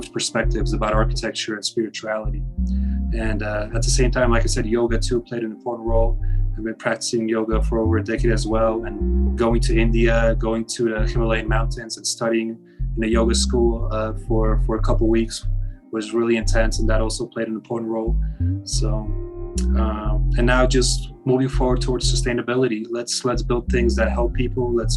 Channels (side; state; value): both; identical; correlation 1.00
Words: perspectives about architecture and spirituality. And at the same time, like I said, yoga too played an important role. I've been practicing yoga for over a decade as well, and going to India, going to the Himalayan mountains and studying in a yoga school for a couple of weeks was really intense, and that also played an important role. So, and now just moving forward towards sustainability. Let's build things that help people. Let's